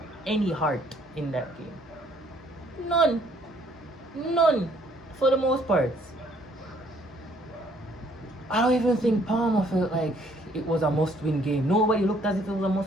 any heart in that game. None. For the most part. I don't even think Palmer felt like it was a must-win game. Nobody looked as if it was a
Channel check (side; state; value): both; normal; correlation 0.63